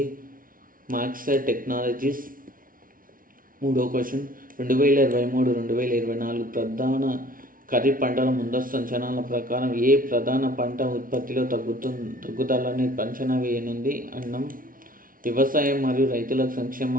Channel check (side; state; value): left; late; 0.40 ms